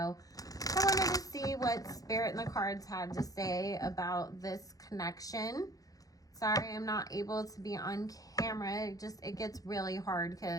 wanted to see what Spirit and the cards had to say about this connection. Sorry, I'm not able to be on camera. It gets really hard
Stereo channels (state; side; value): late; right; 0.17 ms